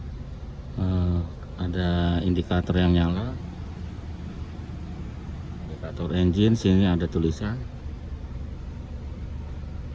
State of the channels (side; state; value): both; identical; correlation 1.00